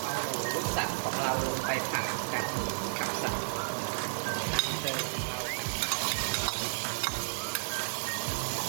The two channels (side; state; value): left; silent; digital silence